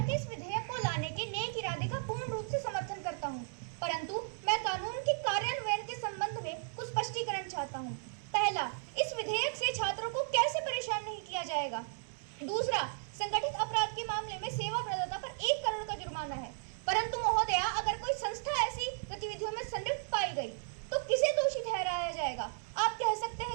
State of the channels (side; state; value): left; silent; digital silence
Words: के इस विधेयक को लाने के नेक इरादे का पूर्ण रूप से समर्थन करता हूं, परंतु मैं कानून के कार्यान्वयन के संबंध में कुछ स्पष्टीकरण चाहता हूं। पहला, इस विधेयक से छात्रों को कैसे परेशान नहीं किया जाएगा। दूसरा, संगठित अपराध के मामले में सेवा प्रदाता पर 1 करोड़ का जुर्माना है, परंतु महोदया अगर कोई संस्था ऐसी गतिविधियों में संलिप्त पाई गई तो किसे दोषी ठहराया जाएगा। आप कह सकते